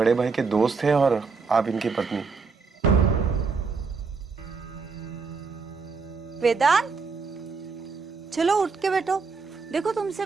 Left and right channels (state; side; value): quieter; left; 4.8 dB